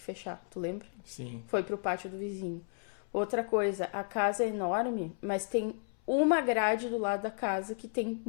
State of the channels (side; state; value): right; silent; 56 dB below the other